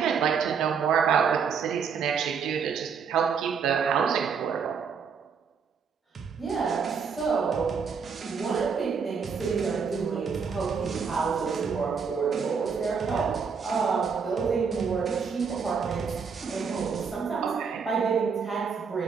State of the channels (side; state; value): left; quieter; 6.1 dB